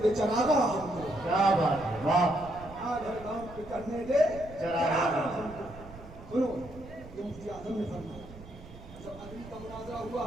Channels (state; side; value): noise; right; rumble, 16 dB below the sound